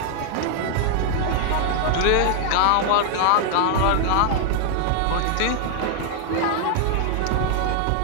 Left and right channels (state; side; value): different; both; correlation 0.00